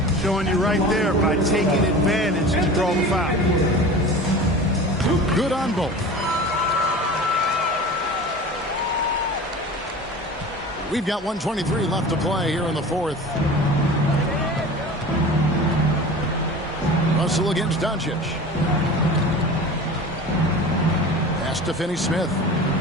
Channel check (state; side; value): normal; both; correlation 0.36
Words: Showing you right there by taking advantage to draw the foul. Good on both. We've got 1:23 left to play here in the fourth. Russell against Doncic. Pass to Finney-Smith.